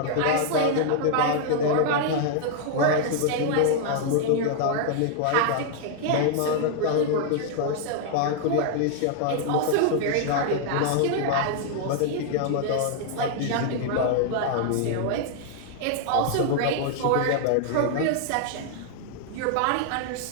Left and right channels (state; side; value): different; both; correlation 0.00